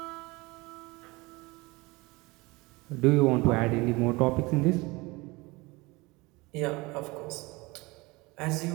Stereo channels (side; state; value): left; quieter; 23.6 dB